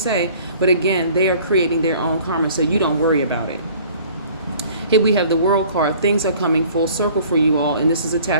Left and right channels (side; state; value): both; inverted; correlation -0.52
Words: But again, they are creating their own karma, so you don't worry about it. Here we have the World card. Things are coming full circle for you all, and this is